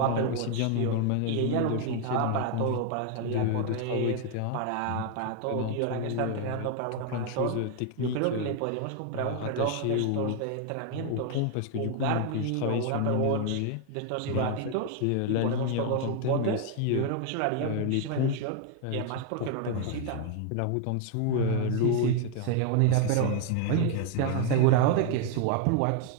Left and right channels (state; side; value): different; both; correlation 0.00